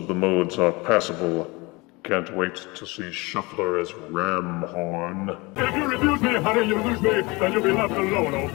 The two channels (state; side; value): quieter; right; 24.9 dB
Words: the modes are passable. Can't wait to see Shuffler as Ramhorn. If you refuse me, honey, you lose me, then you'll be left alone. Oh,